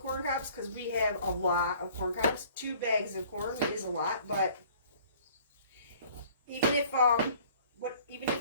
cobs because we have a lot of corn cobs. 2 bags of corn is a lot, but even if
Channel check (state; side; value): inverted; both; correlation -0.54